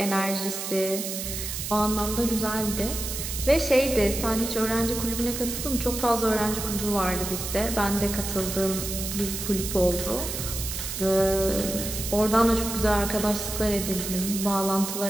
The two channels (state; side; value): noise; right; hiss, 5 dB below the sound